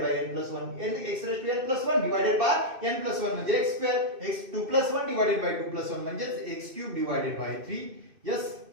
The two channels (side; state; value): left; late; 2.6 ms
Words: by N plus 1, X raise to N plus 1 divided by N plus 1 म्हणजे X square, X 2 plus 1 divided by 2 plus 1 म्हणजे X cube divided by 3. Yes,